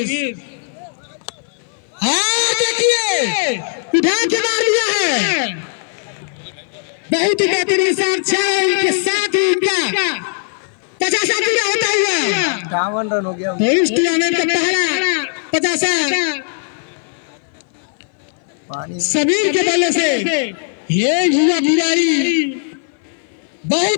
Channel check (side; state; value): right; silent; 58 dB below the other